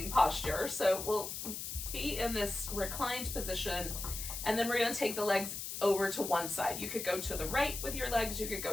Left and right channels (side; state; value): left; noise; hiss, 6 dB below the sound